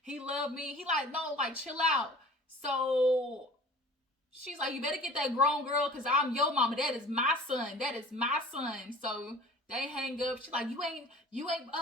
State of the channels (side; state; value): both; normal; correlation 0.45